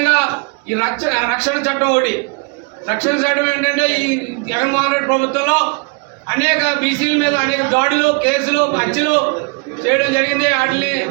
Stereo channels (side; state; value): left; quieter; 33.1 dB